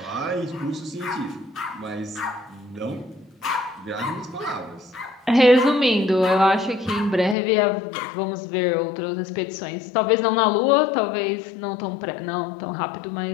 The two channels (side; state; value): right; drops out; at 7.4 s